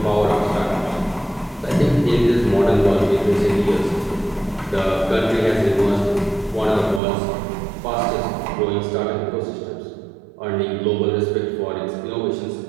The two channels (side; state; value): left; drops out; at 7.0 s